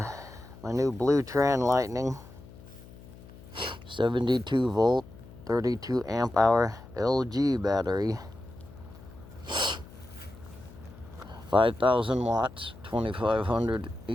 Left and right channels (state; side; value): noise; left; hum, 19 dB below the sound